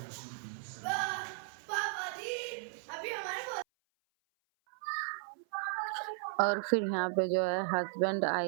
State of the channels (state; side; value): silent; left; 54 dB below the other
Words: और फिर यहाँ पे जो है हस्बैंड